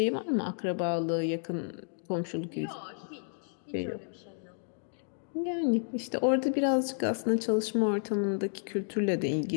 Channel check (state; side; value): silent; right; digital silence